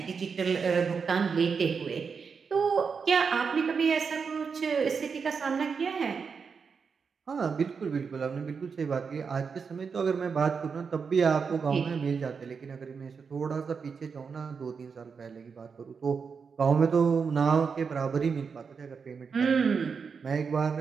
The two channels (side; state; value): left; quieter; 5.7 dB